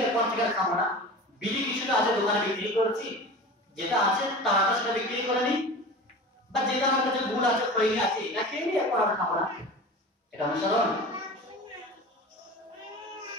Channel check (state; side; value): normal; both; correlation 0.35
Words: এরপর থেকে আর খাবো না, বিড়ি কিছুটা আছে দোকানে বিক্রি করছি, যেটা আছে তারা সেটা বিক্রি করে নি, বা যেটা আমার কাছে ভুল আছে খৈনি আছে এটা খেয়ে নিই, এরপর আর খাবো না, এটা অনুসরণ।